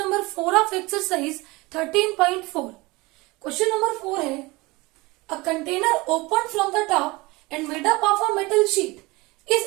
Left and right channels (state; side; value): quieter; left; 23.0 dB